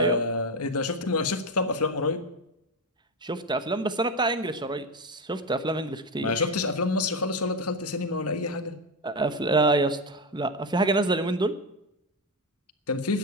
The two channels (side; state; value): both; normal; correlation 0.13